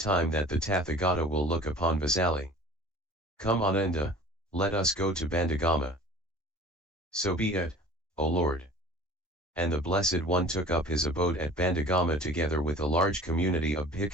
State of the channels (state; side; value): normal; both; correlation 0.44